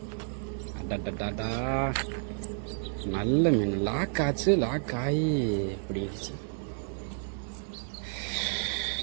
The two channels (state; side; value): silent; left; 57 dB below the other